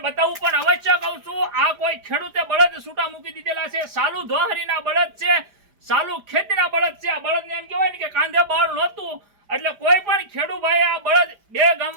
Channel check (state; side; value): late; left; 4.9 ms